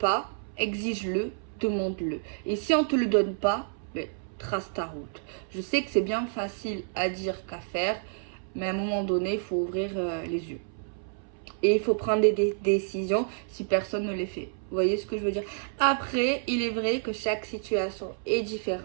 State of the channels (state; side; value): silent; left; 59 dB below the other